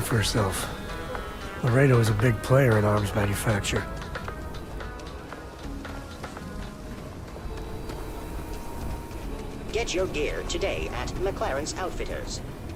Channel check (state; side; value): identical; both; correlation 1.00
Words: herself. Laredo is a big player in arms manufacture. Get your gear today at McLaren's Outfitters.